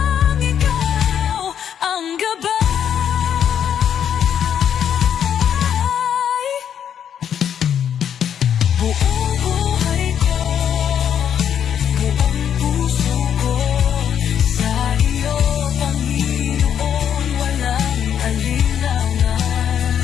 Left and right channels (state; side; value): quieter; right; 8.9 dB